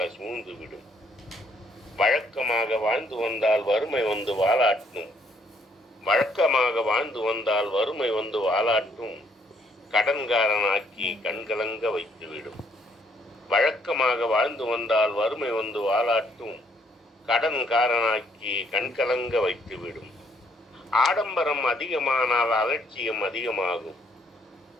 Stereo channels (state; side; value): normal; both; correlation 0.68